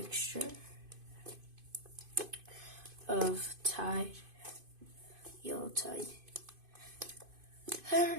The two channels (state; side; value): late; left; 2.5 ms